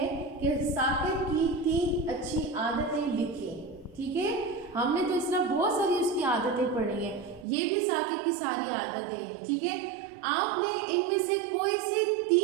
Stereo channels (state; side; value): drops out; left; at 7.5 s